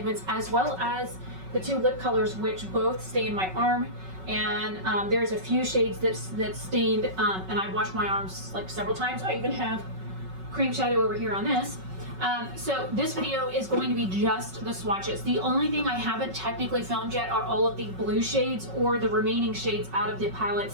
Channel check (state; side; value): late; left; 5.3 ms